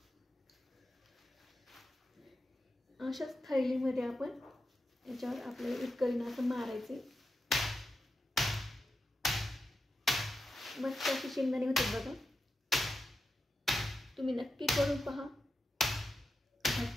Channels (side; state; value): both; normal; correlation 0.89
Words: अशाच थैलीमध्ये आपण याच्यावर आपल्याला इतकरीनं असं मारायचे. मस्त अशी शेंगदाणे होते बघा. तुम्ही नक्की करून पहा,